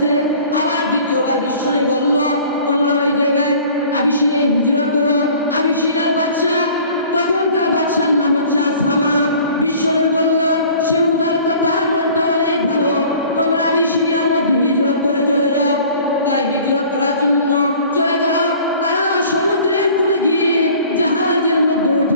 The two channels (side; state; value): both; inverted; correlation -0.49